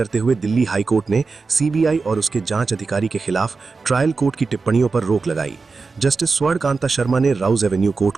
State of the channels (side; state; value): left; quieter; 4.4 dB